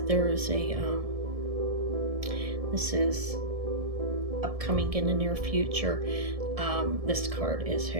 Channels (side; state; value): left; late; 1.7 ms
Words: there is a, this is upcoming in the near future. This card is